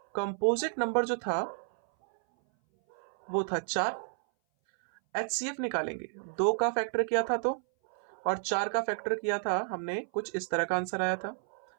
कंपोजिट नंबर जो था वो था 4। एचसीएफ निकालेंगे, 2 का फैक्टर किया था तो, और 4 का फैक्टर किया था हमने, कुछ इस तरह का आंसर आया था,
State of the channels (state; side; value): silent; left; 57 dB below the other